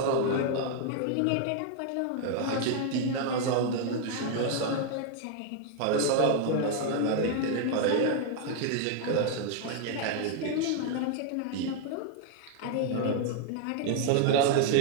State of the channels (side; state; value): both; different; correlation 0.00